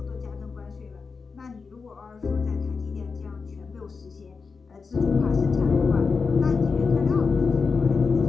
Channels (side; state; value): right; quieter; 4.9 dB